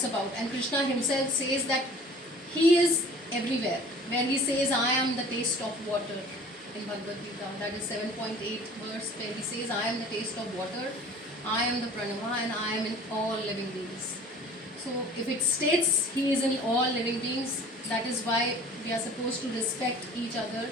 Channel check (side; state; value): both; normal; correlation 0.46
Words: about. And Krishna himself says that he is everywhere. Where he says, I am the taste of water in Bhagavad Gita. That is 7.8 verse where he says, I am the taste of water, I am the pranava, and I am in all living beings. So if it states he is in all living beings, that is why we are supposed to respect each other,